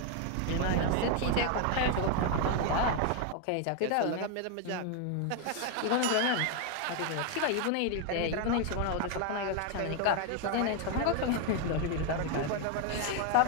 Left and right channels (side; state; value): both; different; correlation 0.01